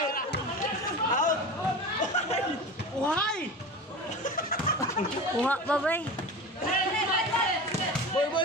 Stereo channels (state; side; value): normal; both; correlation 0.31